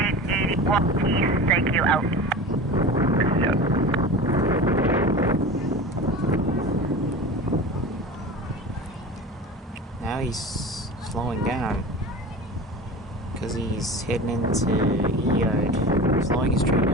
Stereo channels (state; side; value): normal; both; correlation 0.33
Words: East, thank you, out. Yeah. Now he's slowing down because he's heading into E-Yard. Slowing his train